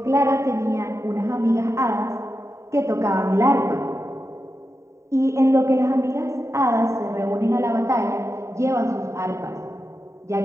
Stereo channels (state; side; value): late; left; 0.14 ms